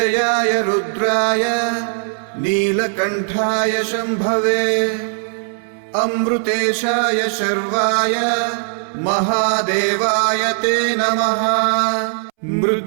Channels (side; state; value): left; silent; 67 dB below the other